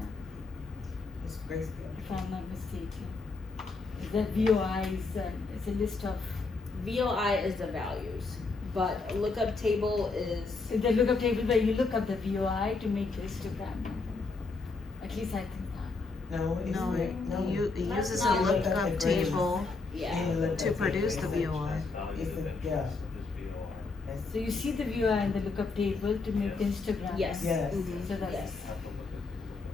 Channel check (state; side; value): quieter; right; 3.9 dB